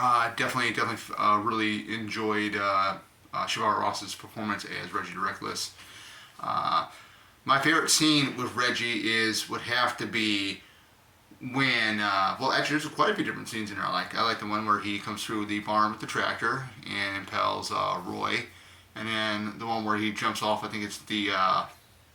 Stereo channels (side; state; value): both; identical; correlation 1.00